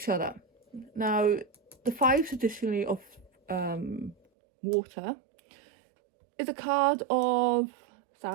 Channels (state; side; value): drops out; left; at 4.2 s